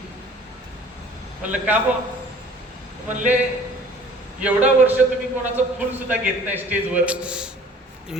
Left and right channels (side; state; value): both; normal; correlation 0.51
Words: म्हणलं का बो? म्हणले एवढा वर्ष तुम्ही कोणाचं फुल सुद्धा घेत नाही स्टेजवर,